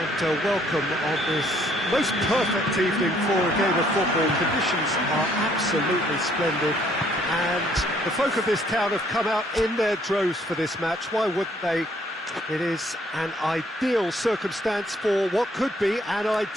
welcome on this most perfect evening for a game of football. Conditions are absolutely splendid and the folk of this town have come out in their droves for this match. Why wouldn't they? It is an ideal circumstance for what could be an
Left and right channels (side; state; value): both; normal; correlation 0.65